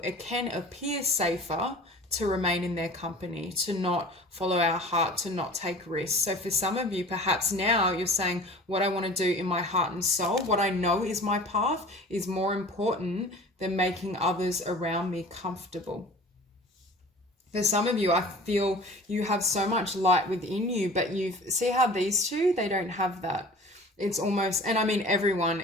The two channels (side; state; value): both; normal; correlation 0.42